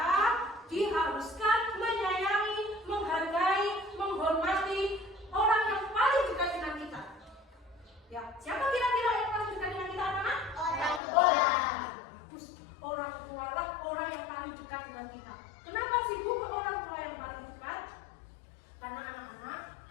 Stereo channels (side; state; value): right; drops out; at 11.0 s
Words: diharuskan menyayangi, menghargai, menghormati orang yang paling dekat dengan kita. Ya, siapa kira-kira yang paling dekat dengan kita, anak-anak? Orang tua. Orang tua lah orang yang paling dekat dengan kita. Kenapa sih Bu ke orang tua yang paling dekat? Karena anak-anak